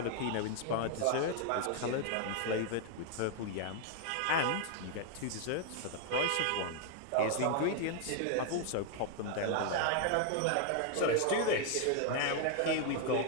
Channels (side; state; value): both; different; correlation 0.00